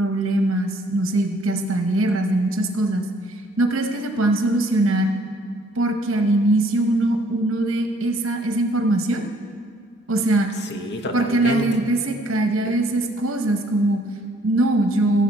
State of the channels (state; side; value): normal; both; correlation 0.62